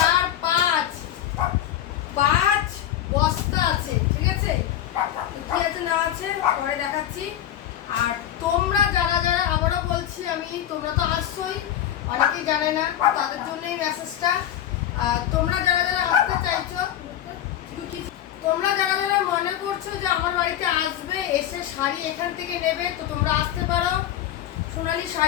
5 5 বস্তা আছে, ঠিক আছে? কি আছে না আছে পরে দেখাচ্ছি। আর তোমরা যারা যারা, আবারও বলছি আমি, তোমরা তো আসছোই, অনেকেই জানে না, তাদের জন্যই মেসেজটা। তোমরা যারা যারা আসতে চাইছো, তোমরা যারা যারা মনে করছো যে আমার বাড়িতে আসবে, এসে শাড়ি এখান থেকে নেবে, তো তোমরা আসতে পারো সোনালী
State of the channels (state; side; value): quieter; right; 11.4 dB